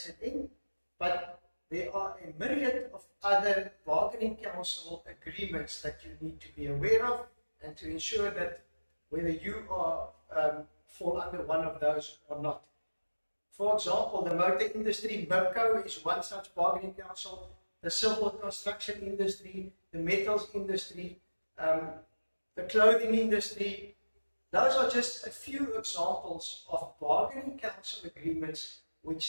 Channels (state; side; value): inverted; both; correlation -1.00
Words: But there are a myriad of other bargaining council agreements that you need to be aware of and to ensure that whether you are fall under one of those or not. For example, the motor industry, MIPCO, is one such bargaining council. The civil construction industry, the metals industry, the clothing industry, Those are just a few examples of bargaining council agreements